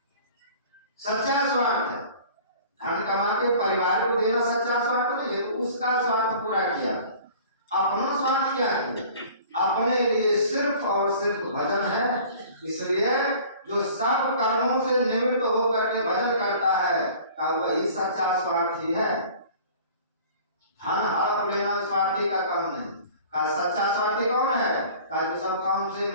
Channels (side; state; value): both; inverted; correlation -0.47